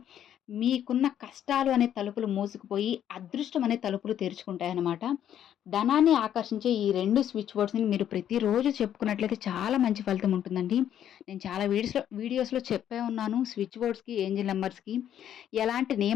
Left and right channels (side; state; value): right; quieter; 10.3 dB